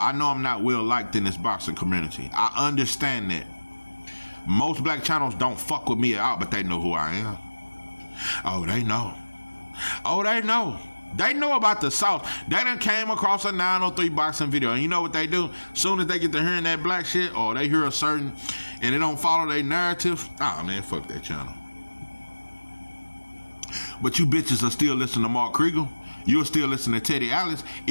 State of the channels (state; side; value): inverted; both; correlation -1.00